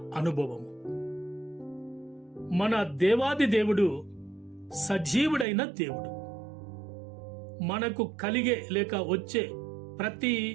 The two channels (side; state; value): left; drops out; at 5.5 s